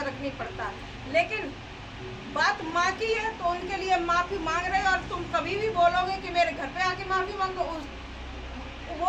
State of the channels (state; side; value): identical; both; correlation 1.00